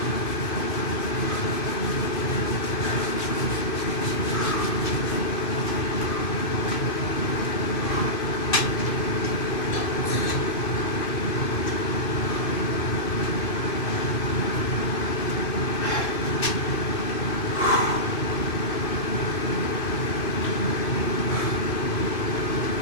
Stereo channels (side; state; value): right; late; 2.5 ms